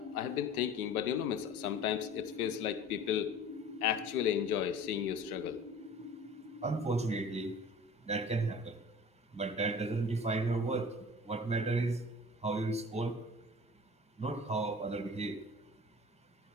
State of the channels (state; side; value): normal; both; correlation 0.42